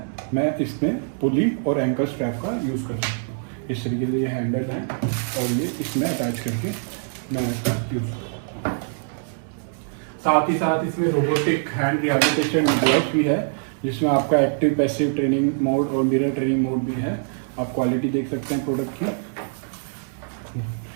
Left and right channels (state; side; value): silent; left; 63 dB below the other